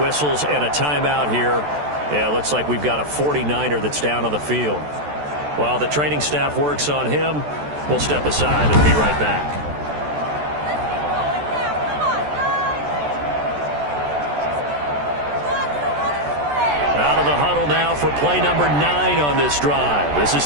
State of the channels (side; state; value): left; late; 14 ms